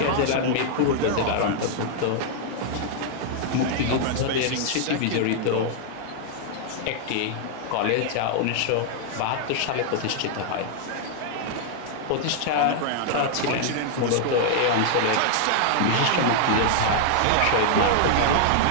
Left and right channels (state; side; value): different; both; correlation -0.01